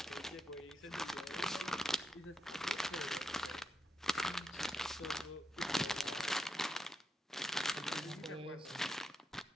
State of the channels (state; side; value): normal; both; correlation 0.85